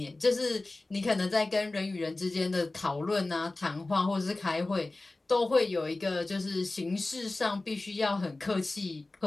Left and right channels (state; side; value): quieter; right; 3.1 dB